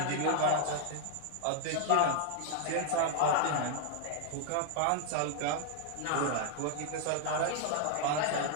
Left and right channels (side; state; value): both; different; correlation 0.00